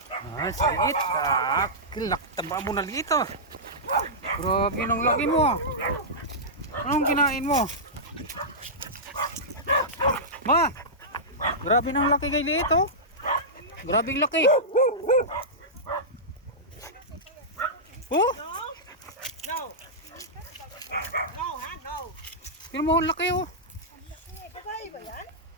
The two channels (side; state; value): both; normal; correlation -0.13